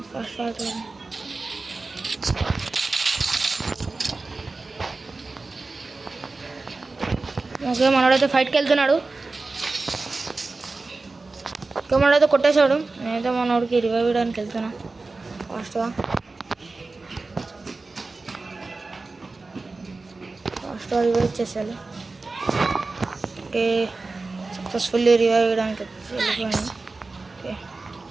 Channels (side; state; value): left; quieter; 3.6 dB